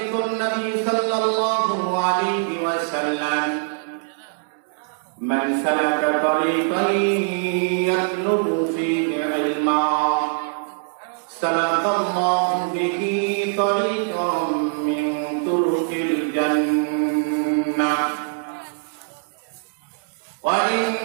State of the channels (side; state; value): left; silent; digital silence